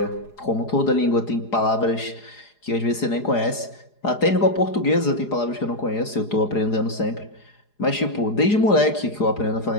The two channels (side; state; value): right; late; 4.8 ms